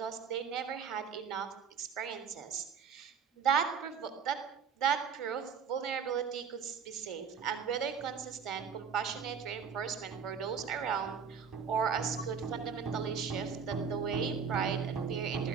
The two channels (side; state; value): left; quieter; 6.6 dB